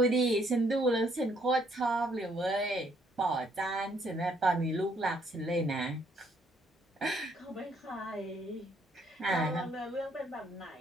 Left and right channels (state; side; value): normal; both; correlation 0.68